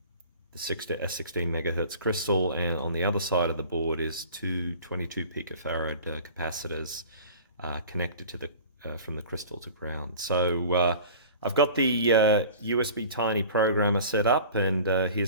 S16 megahertz crystal, and on the other side of the board is two 22 picofarad capacitors connected to the from the crystal to ground. So I've got the USB tiny programmer set up, and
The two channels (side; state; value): both; inverted; correlation -0.42